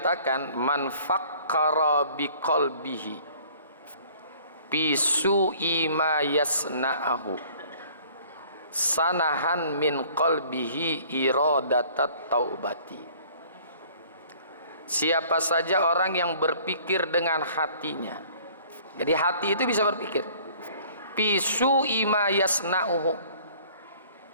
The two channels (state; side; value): inverted; both; correlation -0.53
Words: man fakkara biqalbihi fi su'i ma yasna'ahu sanahan min qalbihi iradatat taubati. Siapa saja orang yang berpikir dengan hatinya. Jadi hati itu bisa berpikir. Fi su'i ma yasna'uhu,